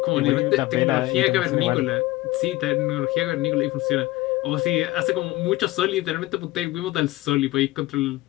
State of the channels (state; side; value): quieter; right; 18.5 dB